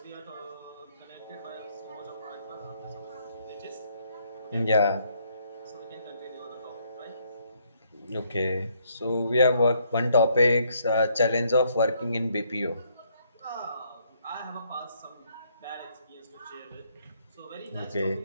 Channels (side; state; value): both; inverted; correlation -0.70